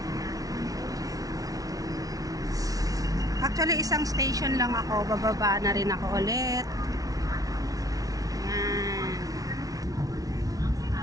Actually isang station lang ako, bababa na rin ako ulit. Ayan.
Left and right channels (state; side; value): late; left; 0.18 ms